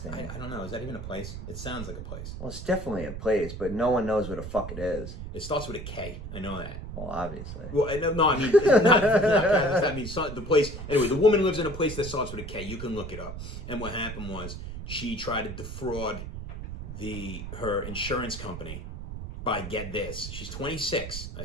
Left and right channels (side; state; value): right; noise; rumble, 8 dB below the sound